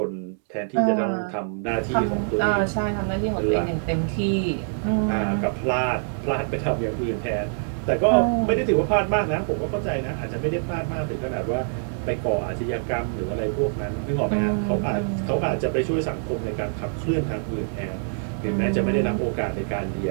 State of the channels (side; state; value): left; silent; digital silence